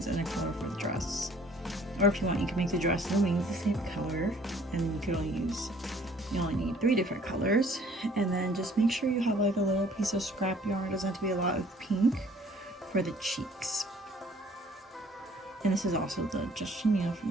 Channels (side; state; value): both; normal; correlation 0.57